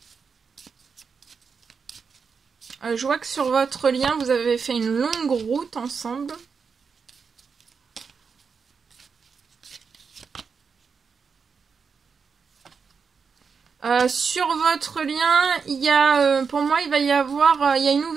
Je vois que sur votre lien, vous avez fait une longue route ensemble. Sur votre lien, il y a, pour moi, il va y avoir, il y a une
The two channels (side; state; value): left; quieter; 5.7 dB